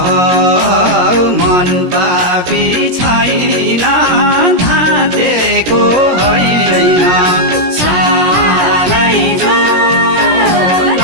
मन पापी छैन धातेको होइन सालैजो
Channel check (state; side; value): late; left; 17 ms